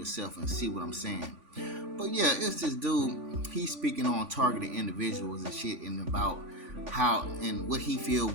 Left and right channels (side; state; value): left; late; 3.5 ms